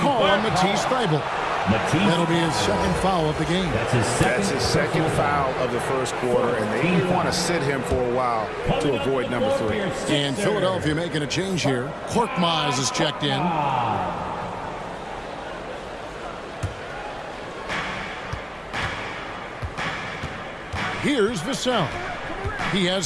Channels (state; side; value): identical; both; correlation 1.00